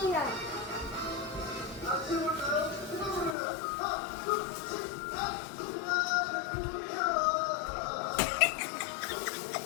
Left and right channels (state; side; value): drops out; right; at 3.4 s